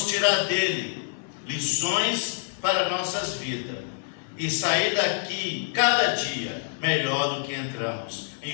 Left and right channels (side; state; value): right; silent; digital silence